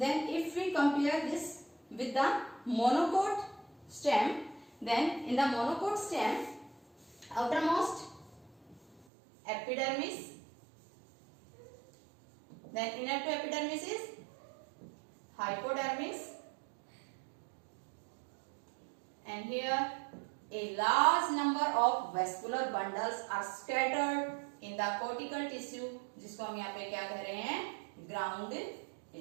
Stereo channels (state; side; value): drops out; left; at 9.0 s